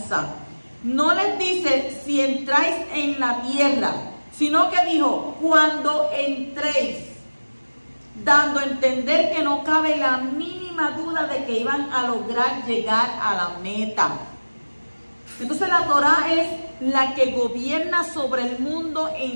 No les dice si entráis en la tierra, sino que dijo, cuando entréis, dando a entender que no cabe la mínima duda de que iban a lograr llegar a la meta. Entonces la Torah es la que gobierna sobre el mundo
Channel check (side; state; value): both; inverted; correlation -1.00